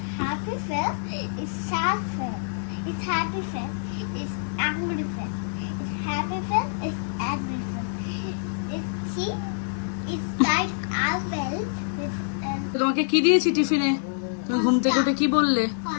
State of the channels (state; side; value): silent; right; digital silence